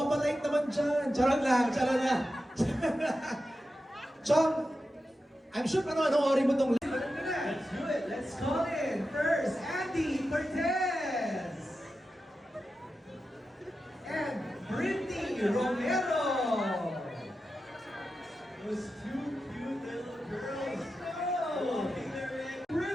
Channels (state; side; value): normal; both; correlation 0.91